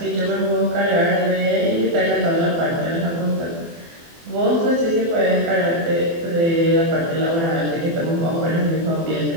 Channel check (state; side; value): late; left; 24 ms